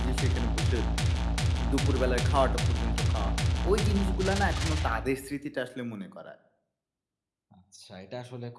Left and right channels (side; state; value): both; identical; correlation 1.00